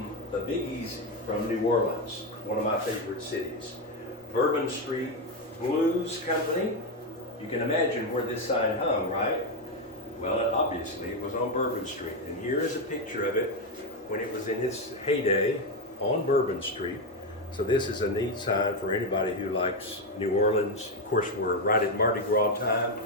the Biggies from New Orleans, one of my favorite cities. Bourbon Street Blues Company. You can imagine where this sign hung, right? Well, obviously it was on Bourbon Street. And here is a picture of it when it was in its heyday on Bourbon Street. So this is a neat sign for anybody who likes New Orleans. Of course, we're right at Mardi Gras time,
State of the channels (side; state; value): both; normal; correlation 0.08